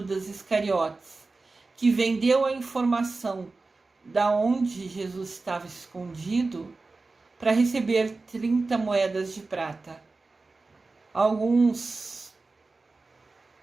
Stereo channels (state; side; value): quieter; left; 3.7 dB